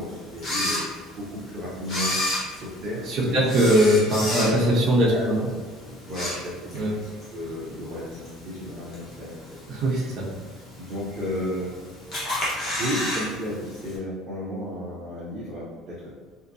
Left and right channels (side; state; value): both; normal; correlation 0.51